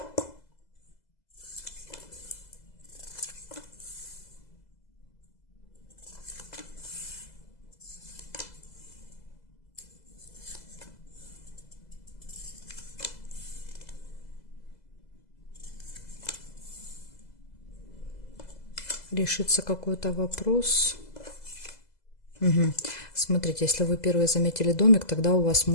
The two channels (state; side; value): late; right; 2.0 ms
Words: Решится какой-то вопрос. Угу. Смотрите, если вы первые заметили домик, тогда у вас